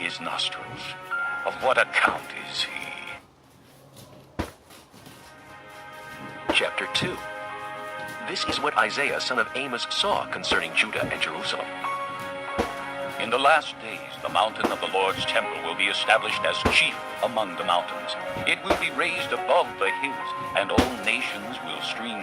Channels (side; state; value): both; identical; correlation 1.00